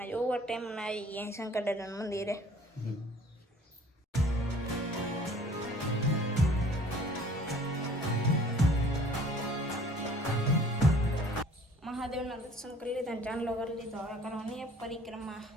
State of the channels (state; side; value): normal; both; correlation 0.52